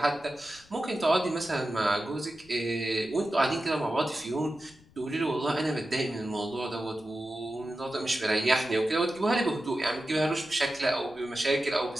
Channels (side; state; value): left; noise; rumble, 27 dB below the sound